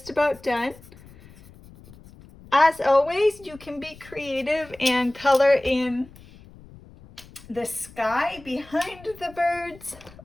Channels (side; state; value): left; noise; rumble, 22 dB below the sound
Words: about done. As always, you can be creative and color in the sky behind the birds,